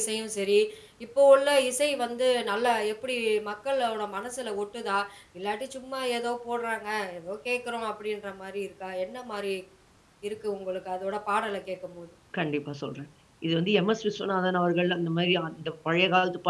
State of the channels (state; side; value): identical; both; correlation 1.00